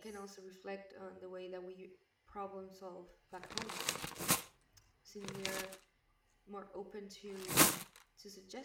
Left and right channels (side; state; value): both; identical; correlation 1.00